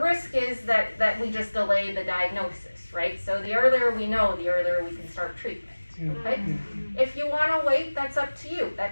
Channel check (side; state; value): both; inverted; correlation -1.00